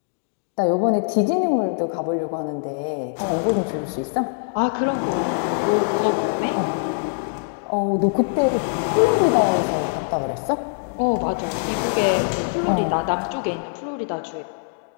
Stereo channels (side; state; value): right; silent; digital silence